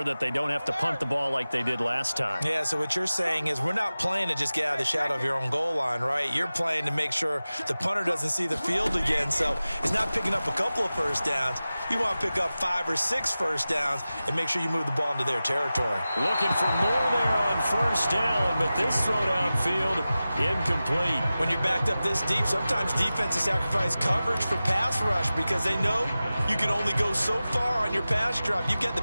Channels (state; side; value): inverted; both; correlation -0.96